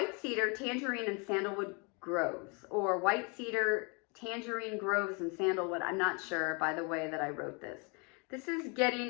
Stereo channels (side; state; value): right; quieter; 32.8 dB